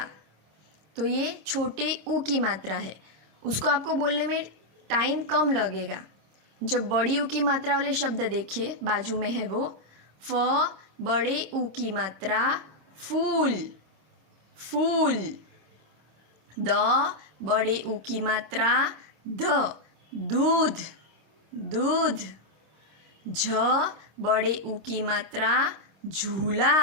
तो ये छोटे ऊ की मात्रा है, उसको आपको बोलने में टाइम कम लगेगा। जब बड़ी ऊ की मात्रा वाले शब्द देखिए बाजू में है वो, फ बड़े ऊ की मात्रा फूल, फूल। द बड़े ऊ की मात्रा ध, दूध, दूध। झ बड़े ऊ की मात्रा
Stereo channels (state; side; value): late; left; 26 ms